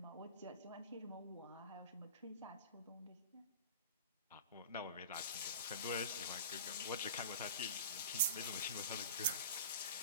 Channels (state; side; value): inverted; both; correlation -0.34